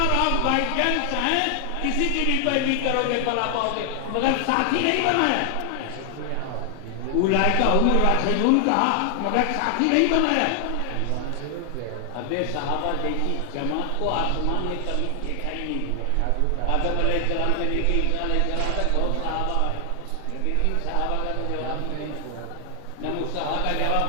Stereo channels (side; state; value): both; different; correlation 0.00